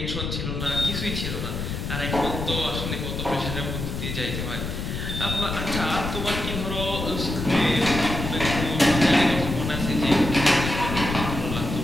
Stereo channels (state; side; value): noise; left; rumble, 4 dB below the sound